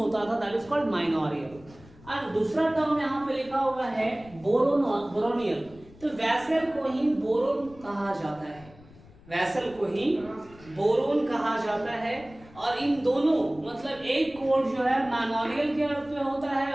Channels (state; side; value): noise; left; rumble, 23 dB below the sound